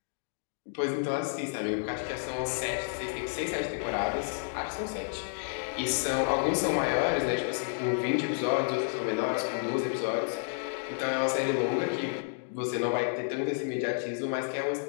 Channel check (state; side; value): silent; right; digital silence